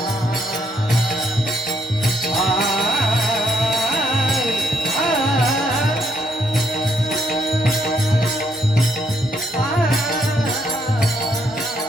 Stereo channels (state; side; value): normal; both; correlation 0.74